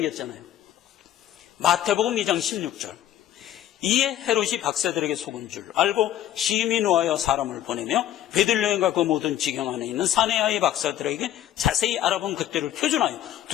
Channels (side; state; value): right; quieter; 12.2 dB